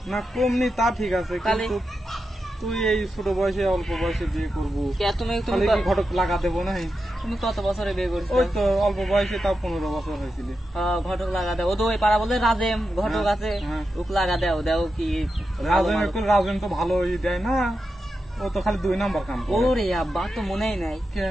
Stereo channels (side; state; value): both; normal; correlation 0.89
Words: না কম নেই তা ঠিক আছে, কিন্তু তুই এই ছোট বয়সে অল্প বয়সে বিয়ে করবো, তুমি ঘটক লাগা দেবো না? তুমি কত বছরে বিয়ে করছো? ওই তো অল্প বয়সে, তাও 15 বছর হয়েছিল। ঘটক লাগা দেও, ও তো ওই পাড়া বলে রাজেম ঘটক আছে, ওক লাগা দেও কি? রাজেন তো ভালোই দেয় না, ও তো খালি 2 নাম্বার কাম করে। ওরে আব্বা তো মনেই নাই।